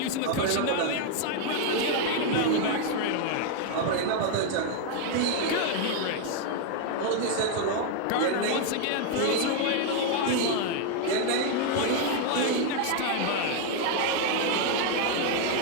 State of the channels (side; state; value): both; different; correlation 0.01